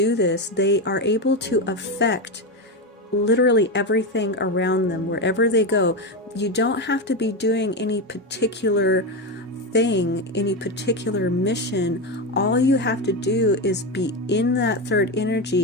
this, they are able to affect literally everything around them, wherever they go. You don't have to be doing any particular thing, any particular mission. All you have to do is be in that third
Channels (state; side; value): normal; both; correlation 0.14